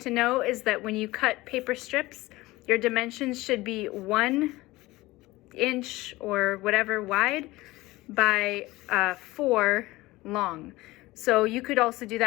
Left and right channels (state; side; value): quieter; right; 19.6 dB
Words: know is that when you cut paper strips, your dimensions should be 1 inch or whatever wide by 4 long. So you could also do